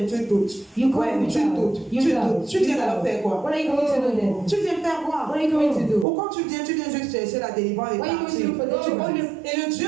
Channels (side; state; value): left; drops out; at 6.1 s